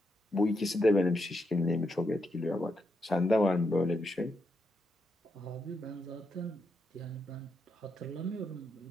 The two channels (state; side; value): normal; both; correlation 0.82